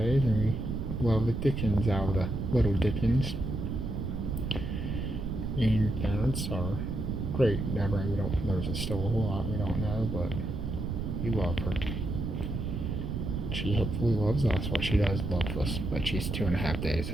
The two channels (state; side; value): noise; right; rumble, 3 dB below the sound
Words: and we love the Dickens out of the little Dickens. And parents are great. There's still a whole lot we don't know, but we love her. She hopefully loves us. Well, she does love us, but she's 2.5 days,